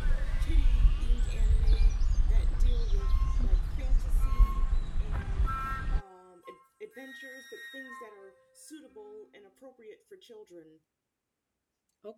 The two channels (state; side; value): identical; both; correlation 1.00